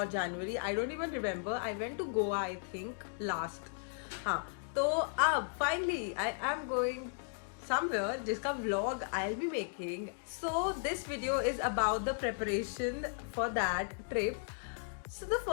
January. I don't even remember. I went to Goa, I think, last. हाँ तो अब finally I am going somewhere जिसका vlog I'll be making. So this video is about the preparation for that trip. So the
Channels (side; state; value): right; silent; digital silence